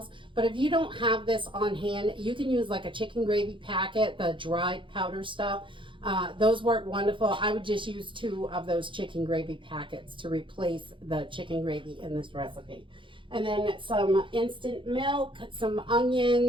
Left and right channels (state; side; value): late; left; 0.24 ms